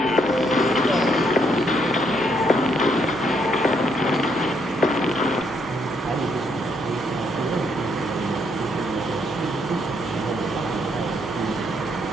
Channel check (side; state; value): right; noise; hum, 20 dB below the sound